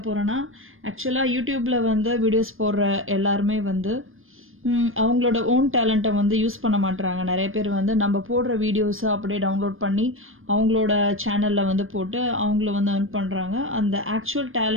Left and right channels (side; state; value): left; late; 0.60 ms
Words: போகிறேன்னா, ஆக்சுவலாக யூடியூப்பில் வந்து வீடியோஸ் போடுற எல்லாருமே வந்து அவங்களோட ஓன் டேலண்ட்டை வந்து யூஸ் பண்ண மாட்டுறாங்க. நிறைய பேர் வந்து நம்ம போடுற வீடியோஸை அப்படியே டவுன்லோட் பண்ணி அவங்களோட சேனலில் வந்து போட்டு அவங்கள வந்து earn பண்ணுறாங்க. அந்த ஆக்சுவல்